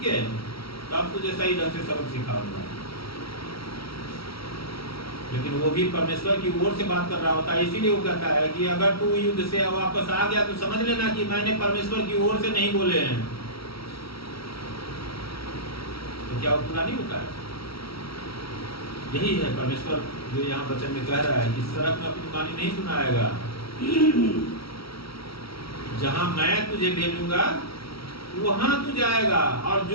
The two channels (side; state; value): right; late; 0.75 ms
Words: के, तब तुझे सही ढंग से सबक सिखाऊंगा। लेकिन वो भी परमेश्वर की ओर से बात कर रहा होता है, इसीलिए वो कहता है कि अगर तू युद्ध से वापस आ गया तो समझ लेना कि मैंने परमेश्वर की ओर से नहीं बोले हैं। तो क्या वो पूरा नहीं होता है? यही है परमेश्वर जो यहाँ वचन में कह रहा है कि सड़क में अपनी वाणी नहीं सुनाएगा, जहां मैं तुझे भेजूंगा वहां तू जाएगा, और